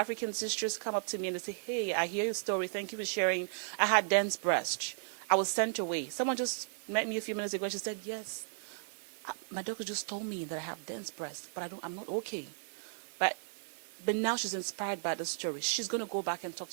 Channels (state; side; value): silent; left; digital silence